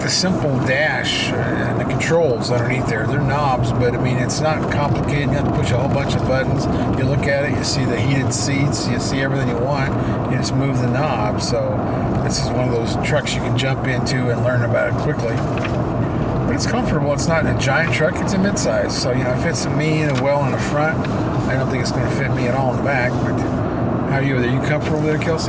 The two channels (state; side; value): identical; both; correlation 1.00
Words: simple dash and the controls underneath there. They're knobs, but I mean, it's not complicated. You have to push a whole bunch of buttons. You look at it, you see the heated seats, you see everything you want. You just move the knob. So this is one of those trucks you can jump into and learn about it quickly. But it's comfortable. It's not a giant truck. It's a midsize. So, you know, it fits me in well in the front. I don't think it's going to fit me at all in the back. But how are you? Are you comfortable with it,